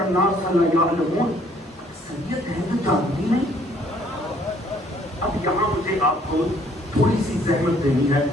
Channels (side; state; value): both; normal; correlation 0.62